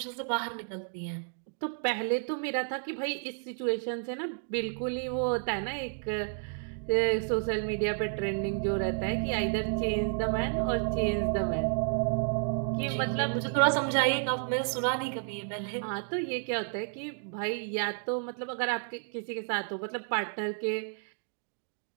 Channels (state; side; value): silent; left; 57 dB below the other